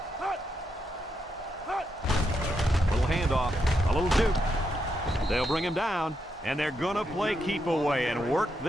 Little handoff, a little juke. They'll bring him down, and they're going to play keep away and work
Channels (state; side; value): normal; both; correlation 0.82